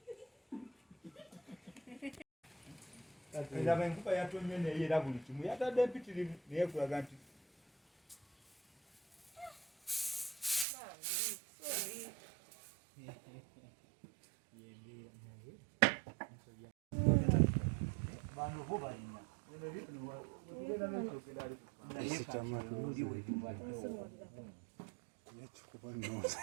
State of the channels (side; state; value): left; drops out; at 10.7 s